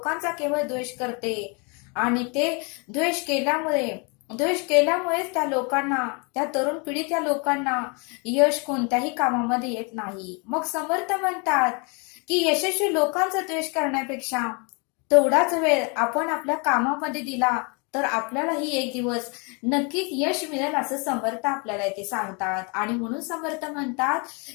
केवळ द्वेष करते. आणि ते द्वेष केल्यामुळेच त्या तरुण पिढी त्या लोकांना यश कोणत्याही कामामध्ये येत नाही. मग समर्थ म्हणतात की यशस्वी लोकांचा द्वेष करण्यापेक्षा तेवढाच वेळ आपण आपल्या कामामध्ये दिला तर आपल्यालाही एक दिवस नक्कीच यश मिळेल, असं समर्थ आपल्याला इथे सांगतात. आणि म्हणून समर्थ म्हणतात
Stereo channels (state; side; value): quieter; right; 32.8 dB